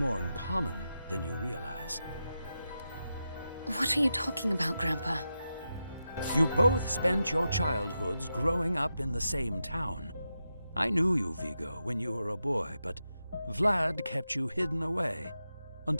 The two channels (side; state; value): both; inverted; correlation -0.89